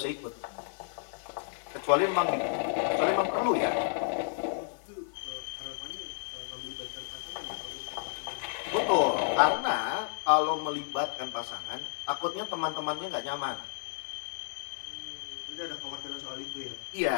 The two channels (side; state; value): right; silent; 56 dB below the other